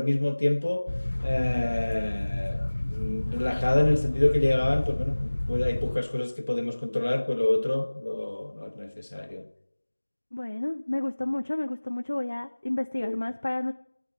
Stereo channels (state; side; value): inverted; both; correlation -1.00